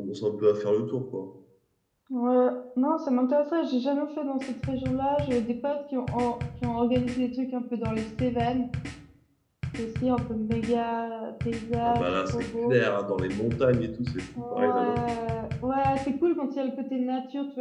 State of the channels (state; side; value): identical; both; correlation 1.00